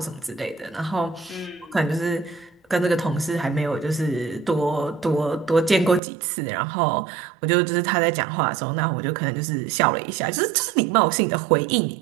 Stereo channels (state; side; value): drops out; left; at 6.0 s